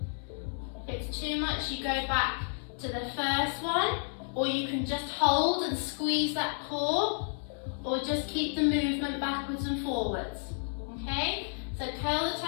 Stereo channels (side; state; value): right; silent; digital silence